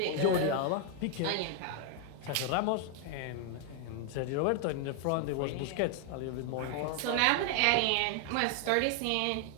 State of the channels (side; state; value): both; different; correlation 0.00